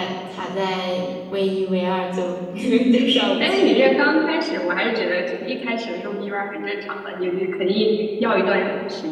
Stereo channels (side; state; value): both; identical; correlation 1.00